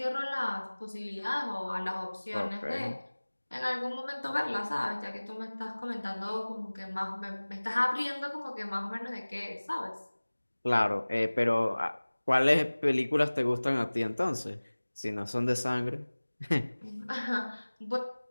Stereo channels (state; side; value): inverted; both; correlation -1.00